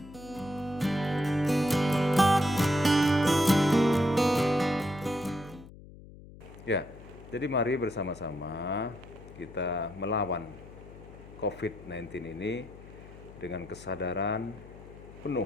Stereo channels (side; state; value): left; noise; hum, 18 dB below the sound